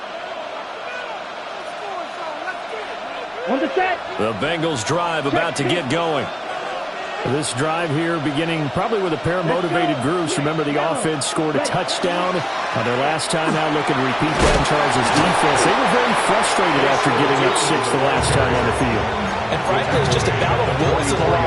On the set. The Bengals drive about to get going. This drive here beginning probably with a pair of motivated groups. Remember, the offense scored a touchdown on their last time out. Looking to repeat that in Charles' defense. They were very frustrated after giving up 6 the last time on the field. And frankly, it's just a battle of wills in a lot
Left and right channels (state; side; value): identical; both; correlation 1.00